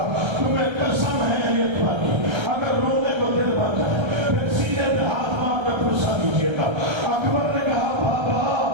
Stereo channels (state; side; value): late; left; 1.3 ms